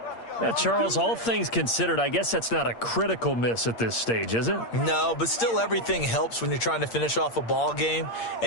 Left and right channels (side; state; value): right; late; 8.6 ms